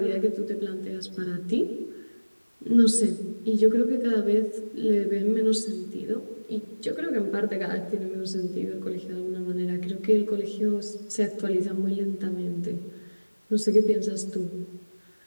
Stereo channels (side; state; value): both; inverted; correlation -1.00